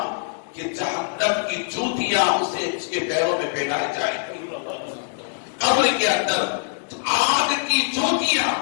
کہ جہنم کی جوتیاں اس کے پیروں میں پہنائی جائیں گی. قبر کے اندر آگ کی جوتیاں،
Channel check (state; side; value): silent; right; digital silence